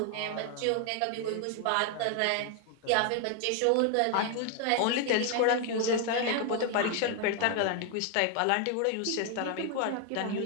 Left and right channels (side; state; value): both; different; correlation 0.00